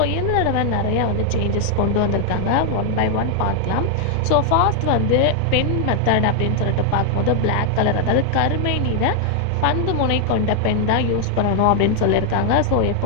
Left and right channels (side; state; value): both; different; correlation 0.00